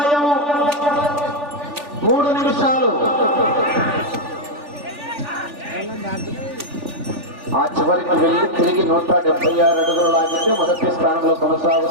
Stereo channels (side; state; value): left; late; 3.4 ms